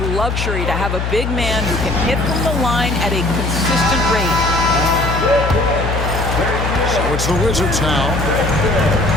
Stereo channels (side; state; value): left; noise; hum, 2 dB below the sound